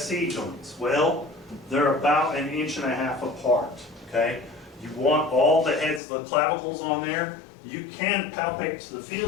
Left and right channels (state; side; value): drops out; right; at 6.0 s